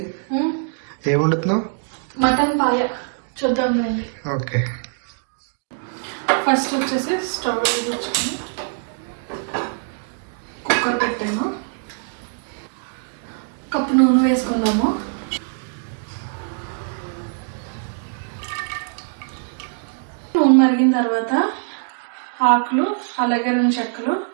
ఏం వండుతున్నావు? మటన్ పాయ చూద్దాం. ఓకే, ఫస్ట్ వచ్చేసి స్టవ్ వెలిగించుకొని కుక్కర్ పెట్టాను. కప్పు నూనె వేసుకుందాము. నూనె మరిగిన తర్వాత ఆకులు, అలాగే 2 చెక్కలు,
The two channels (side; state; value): left; silent; digital silence